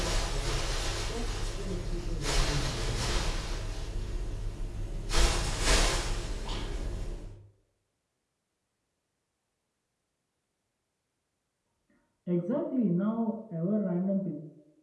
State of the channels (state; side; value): identical; both; correlation 1.00